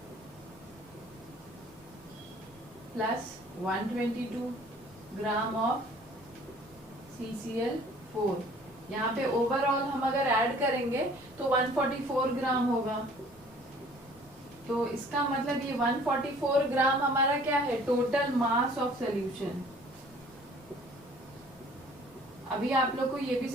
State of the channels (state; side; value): normal; both; correlation 0.53